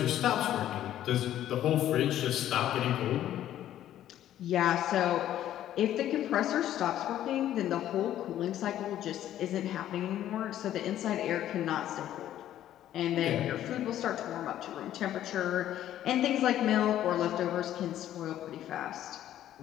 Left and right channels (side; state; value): right; quieter; 12.1 dB